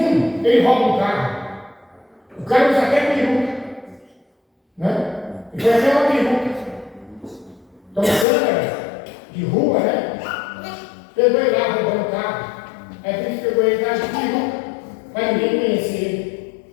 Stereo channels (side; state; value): right; drops out; at 8.2 s